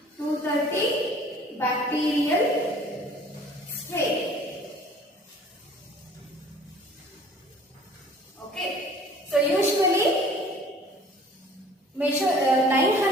230 bacterial strain. Okay, so usually measure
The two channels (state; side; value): normal; both; correlation 0.51